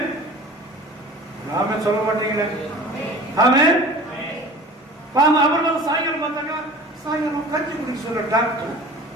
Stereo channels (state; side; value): normal; both; correlation 0.41